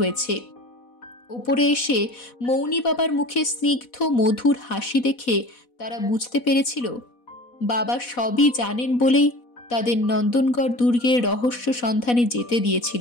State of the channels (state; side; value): late; right; 4.1 ms